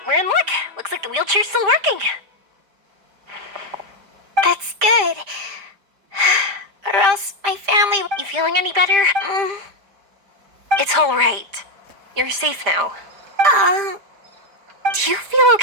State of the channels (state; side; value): late; left; 5.0 ms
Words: we're in luck. Looks like the wheelchair's still working. That's good. Or else my family... You feeling any better? It's all right. You're safe now. Do you feel